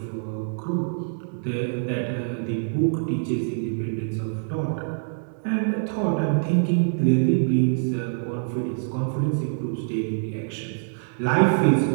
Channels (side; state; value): left; silent; digital silence